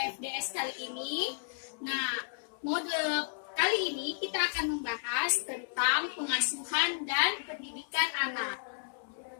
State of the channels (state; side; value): silent; right; 56 dB below the other